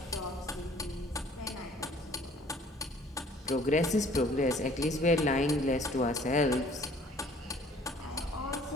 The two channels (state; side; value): normal; both; correlation 0.55